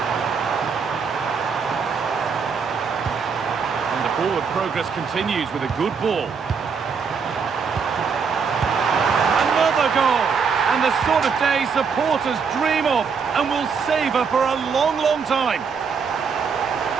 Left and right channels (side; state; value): left; quieter; 5.9 dB